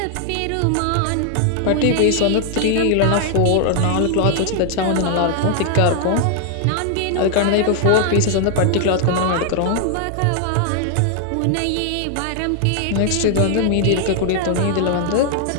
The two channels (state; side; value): different; both; correlation 0.00